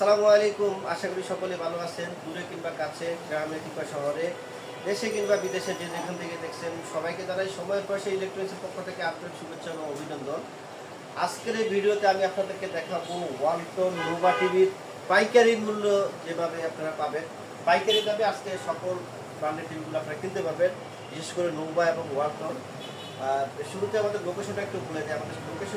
আলাইকুম। আশা করি সকলে ভালো আছেন। দূরে কিংবা কাছে, গ্রামে কিংবা শহরে, দেশে কিংবা বিদেশে যে যেখান থেকে দেখছেন সবাইকে জানাই সময়ের পাশে ইলেকট্রনিক্সের পক্ষ থেকে আপনার শুভেচ্ছা ও অভিনন্দন। আজকের এই ভিডিওতে আমি আপনাদেরকে দেখাবো ওয়ালটন নোভা টিভির পাইকারি মূল্য যেভাবে আপনারা পাবেন। পাইকারি দামে আজকে সকল ব্র্যান্ডের টিভিগুলো আপনারা কিনতে পারবেন, বিশেষ করে নোভা এবং ওয়ালটন। শুরুতে আমাদের লোকেশনটা একটু বলে দিই। আমাদের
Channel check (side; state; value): both; identical; correlation 1.00